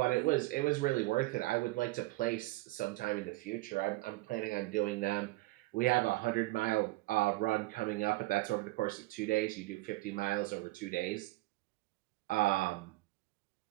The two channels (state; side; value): quieter; left; 20.5 dB